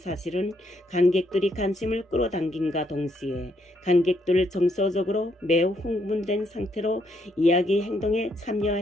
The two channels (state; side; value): normal; both; correlation 0.74